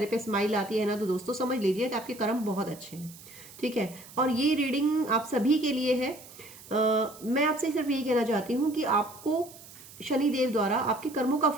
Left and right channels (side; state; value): right; noise; hiss, 19 dB below the sound